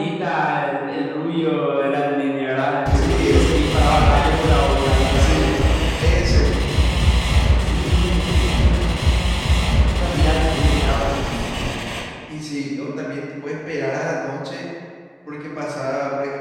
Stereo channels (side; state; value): both; identical; correlation 1.00